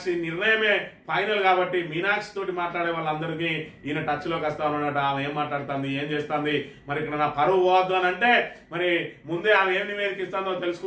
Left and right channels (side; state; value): both; identical; correlation 1.00